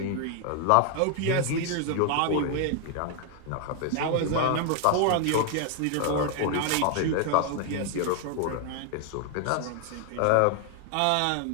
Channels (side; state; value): both; different; correlation 0.01